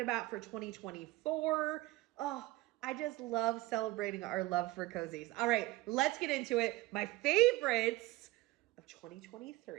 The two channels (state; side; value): quieter; left; 18.9 dB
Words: for 2024. Oh, I just love celebrating our love for cozies. All right, let's get into it. My favorites of